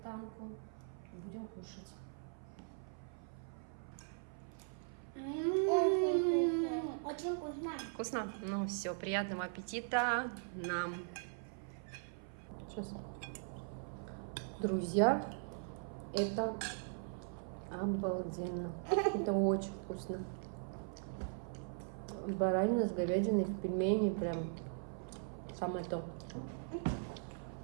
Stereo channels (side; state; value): left; silent; 51 dB below the other